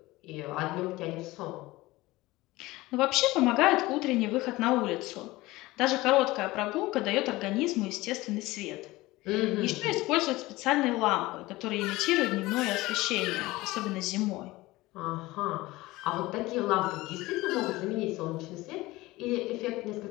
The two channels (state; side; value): quieter; right; 19.6 dB